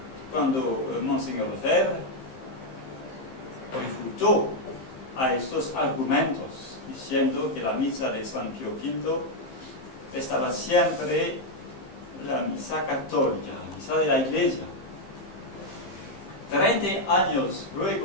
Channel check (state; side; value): late; right; 15 ms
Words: Monseñor Lefebvre refutó a estos argumentos, diciendo que la misa de San Pío V estaba siempre la misa católica, la misa de la Iglesia. 30 años